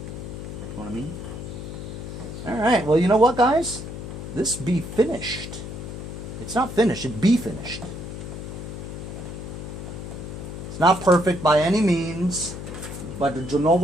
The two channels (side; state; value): left; noise; hum, 8 dB below the sound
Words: You know what I mean? Alright, well, you know what, guys? This be finished. It's not finished, it be finished. It's not perfect by any means, but you know